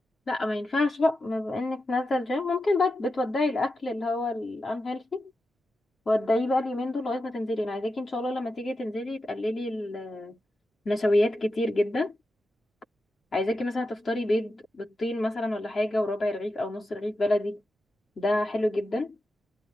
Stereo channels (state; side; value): normal; both; correlation 0.90